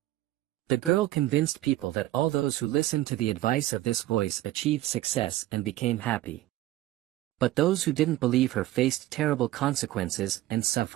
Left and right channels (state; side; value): quieter; left; 15.6 dB